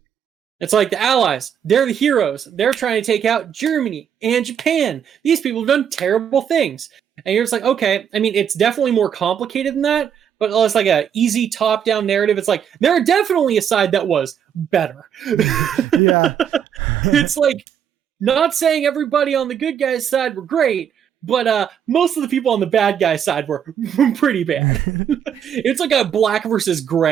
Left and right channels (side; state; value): left; quieter; 8.5 dB